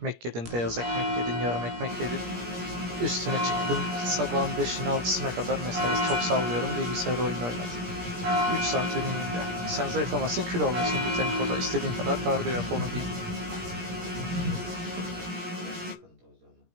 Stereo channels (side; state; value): left; late; 17 ms